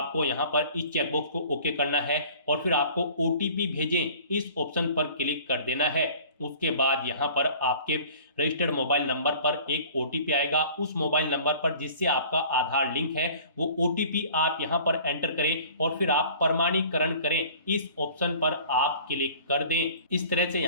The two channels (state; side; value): inverted; both; correlation -0.48